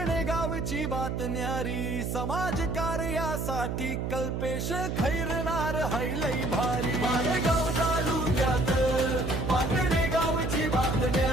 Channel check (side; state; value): right; noise; hum, 2 dB below the sound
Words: गावची बात न्यारी, समाज कार्यासाठी कल्पेश खैरनार हैलई भारी. मालेगाव तालुक्यात पाटणे गावची बात